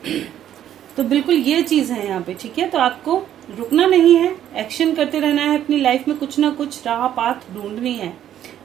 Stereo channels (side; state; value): left; quieter; 11.0 dB